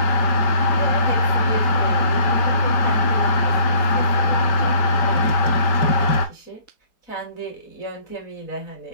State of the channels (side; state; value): right; late; 5.1 ms